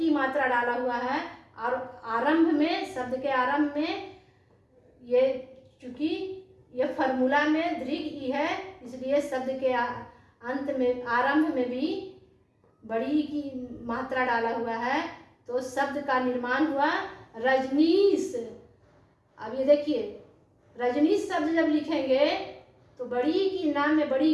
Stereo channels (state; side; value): identical; both; correlation 1.00